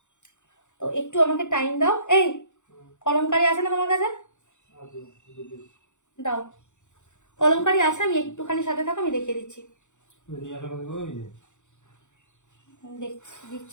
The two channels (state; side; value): late; right; 0.85 ms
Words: তো একটু আমাকে টাইম দাও। এই কলমকারি আছে না তোমার কাছে? দাও, কলমকারি আছে, আমি একটুখানি সাথে থাকো, আমি দেখিয়ে দিচ্ছি।